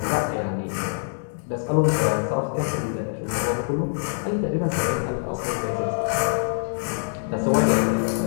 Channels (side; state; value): right; silent; 62 dB below the other